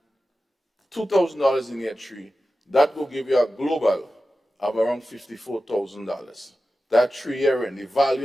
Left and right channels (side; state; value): both; normal; correlation 0.93